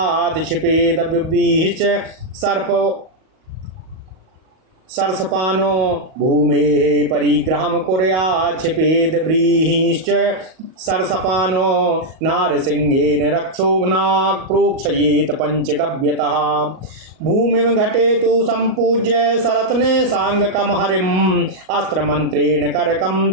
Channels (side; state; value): left; late; 38 ms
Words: क्षिपेदव्यभिश्च सरसपानो भूमेः परिग्रहं कुर्यात् क्षिपेद व्रीहिश्च सरसपानो नारसिंहेन रक्षोघ्नाक् प्रोक्षयेत पंचगव्यतः। भूमिं घटेतु सम्पूज्य सरत्ने सांगकं हरिम् अस्त्रमन्त्रेण करकं